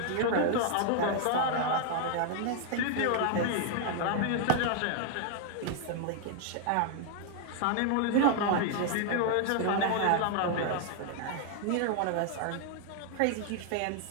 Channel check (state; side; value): different; both; correlation 0.00